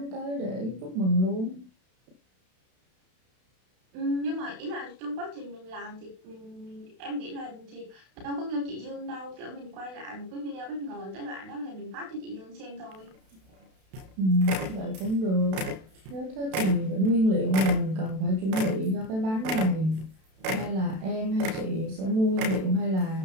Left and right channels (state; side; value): late; left; 32 ms